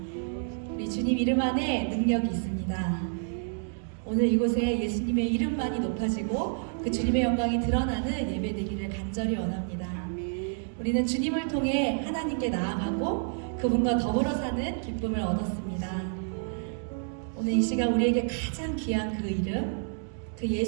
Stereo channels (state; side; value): silent; left; 59 dB below the other